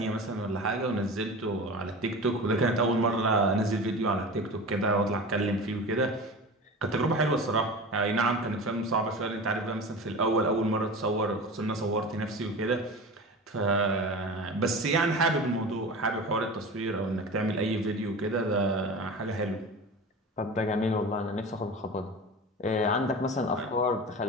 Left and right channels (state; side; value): normal; both; correlation 0.32